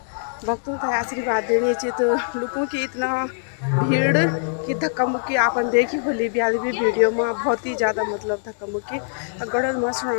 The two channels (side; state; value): right; silent; digital silence